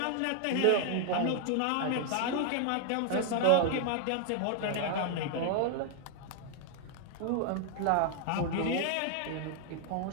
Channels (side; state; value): both; different; correlation 0.00